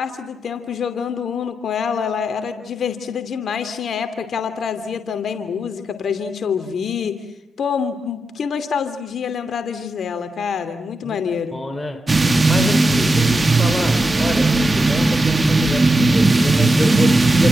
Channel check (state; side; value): normal; both; correlation 0.86